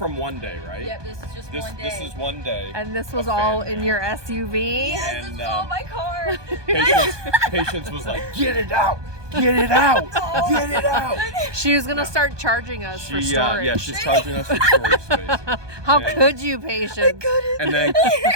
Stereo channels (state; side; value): late; left; 1.2 ms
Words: one day, right? Yeah, this is just one day. This is one day. And this was all in your SUV? Yes, this is all my car. Patience was like, get it out! Get it out! Get it out! She was gonna start charging us for storage. Yeah, she's charging us for storage space. How could you, Patience? I couldn't. And then